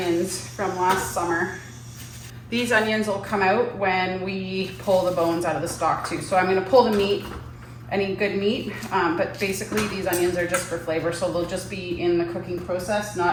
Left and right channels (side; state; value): both; identical; correlation 1.00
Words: from last summer. These onions will come out when we pull the bones out of the stock too. So I'm gonna pull the meat, any good meat, but basically these onions are just for flavor, so they'll just be in the cooking process,